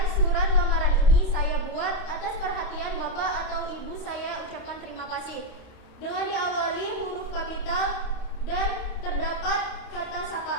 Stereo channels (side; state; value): right; late; 29 ms